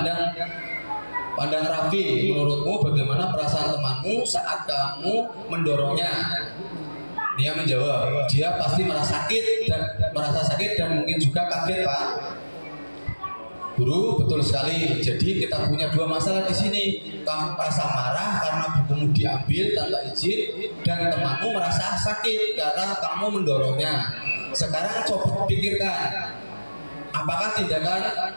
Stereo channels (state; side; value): inverted; both; correlation -1.00